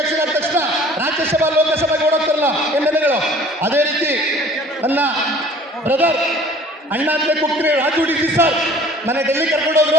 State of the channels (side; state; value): both; normal; correlation 0.50